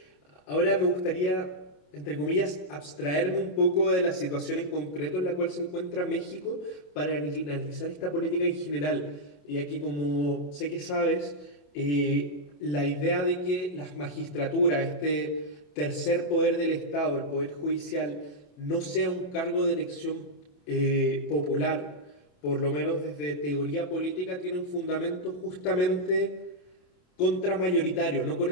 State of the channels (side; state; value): right; late; 28 ms